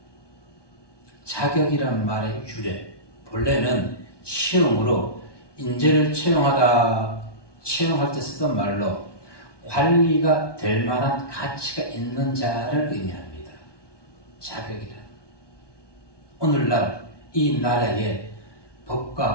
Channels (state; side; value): late; right; 1.2 ms